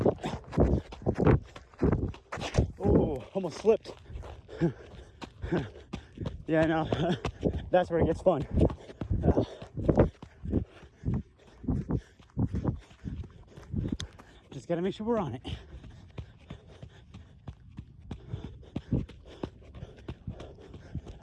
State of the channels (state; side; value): identical; both; correlation 1.00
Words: Oh, almost slipped. Yeah, no, that's where it gets fun. Just gotta make sure we're on it.